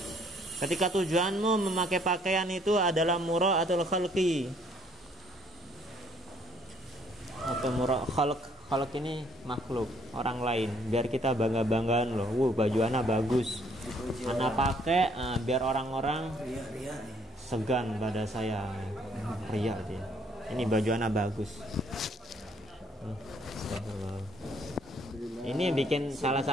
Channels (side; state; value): both; normal; correlation 0.64